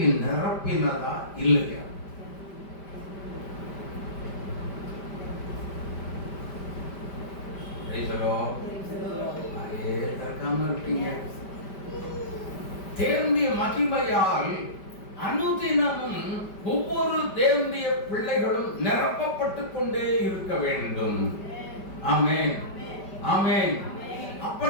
நிரப்பினதா இல்லையா? தேவனுடைய மகிமையால் அனுதினமும் ஒவ்வொரு தேவனுடைய பிள்ளைகளும் நிரப்பப்பட்டு கொண்டே இருக்க வேண்டும். ஆமென், ஆமென்.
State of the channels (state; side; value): late; right; 5.1 ms